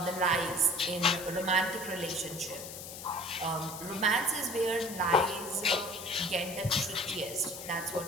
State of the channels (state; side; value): noise; left; hiss, 11 dB below the sound